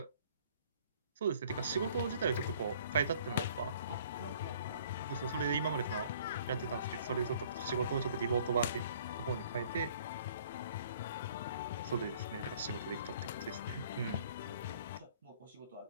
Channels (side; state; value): both; inverted; correlation -0.55